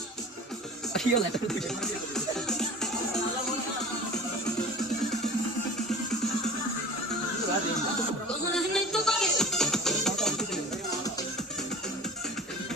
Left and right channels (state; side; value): normal; both; correlation 0.39